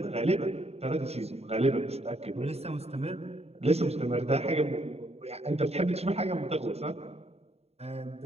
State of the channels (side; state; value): left; late; 0.30 ms